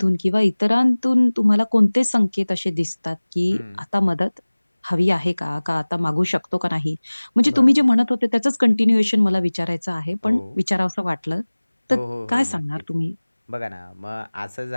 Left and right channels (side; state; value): both; inverted; correlation -1.00